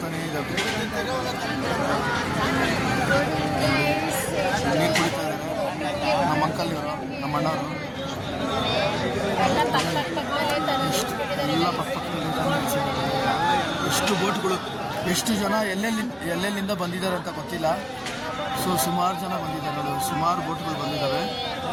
ಇದ್ದಾವೆ. ನೀರು ಕುಡಿತಾ ಇದ್ದಾರೆ ನಮ್ಮ ಅಂಕಲ್ ಇವರು, ನಮ್ಮ ಅಣ್ಣವರು ಎಲ್ಲ ಪಕ್ಕದಲ್ಲಿ. ಎಷ್ಟು ಬೋಟ್ಗಳು, ಎಷ್ಟು ಜನ ಎಲ್ಲೆಲ್ಲಿಂದ ಬಂದಿದ್ದಾರೆ ಅಂತ ಗೊತ್ತಿಲ್ಲ. ಸೊ ಸುಮಾರು ಜನ ಬಂದಿದ್ದಾರೆ ನೋಡಿ, ಸುಮಾರು ಬೋಟ್ಗಳು ಬಂದಿದ್ದಾವೆ.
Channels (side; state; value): both; identical; correlation 1.00